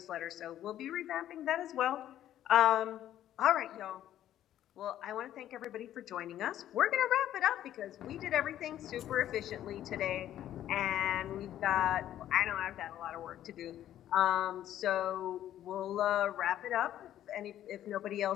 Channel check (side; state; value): right; quieter; 11.9 dB